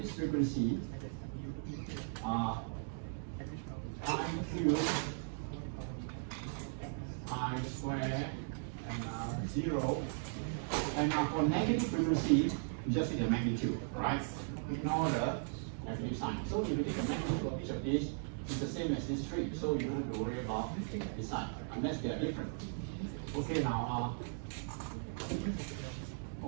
this frequency pi cube pi square and 0. And now for negative frequency, you just take the magnitude, right? Ignore the negative sign. So if you take the magnitude of each of these, it's the same as this tree. So you don't have to worry about this side, unless they are different. Okay, now,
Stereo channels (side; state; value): left; silent; digital silence